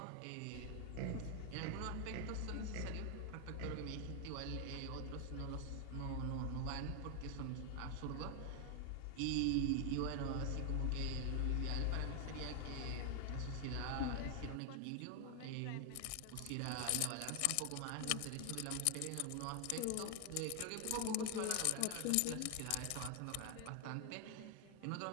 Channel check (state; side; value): different; both; correlation 0.00